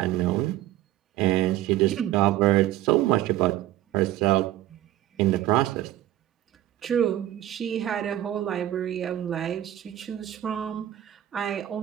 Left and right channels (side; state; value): left; quieter; 13.7 dB